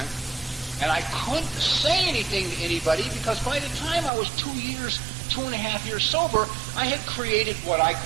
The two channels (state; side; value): drops out; left; at 4.1 s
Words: And I couldn't say anything to anybody because by the time I was 2.5 years sober, I had created what I